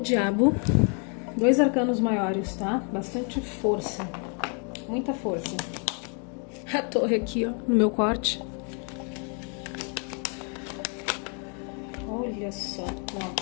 2 arcanos maiores, tá? Bastante força. Muita força. A torre aqui, ó, no meu corte. Olha só,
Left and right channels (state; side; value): quieter; right; 39.4 dB